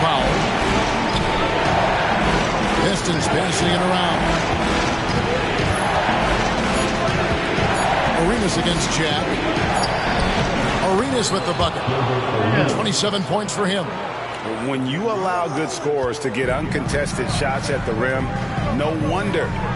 Powell. Pistons passing it around. Arenas against Jack. Arenas with the bucket. 27 points for him. When you allow good scorers to get uncontested shots at the rim, no wonder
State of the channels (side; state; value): both; identical; correlation 1.00